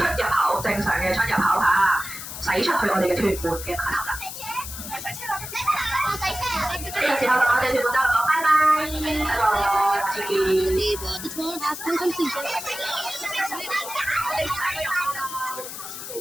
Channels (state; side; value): noise; left; hiss, 9 dB below the sound